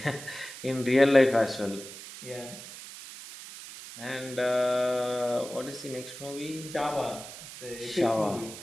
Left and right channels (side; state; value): right; noise; hiss, 13 dB below the sound